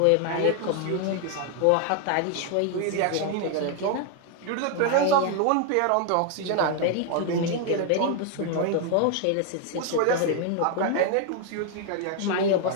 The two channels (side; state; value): both; different; correlation 0.00